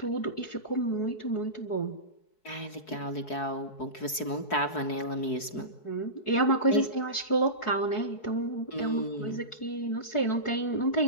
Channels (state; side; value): late; right; 4.7 ms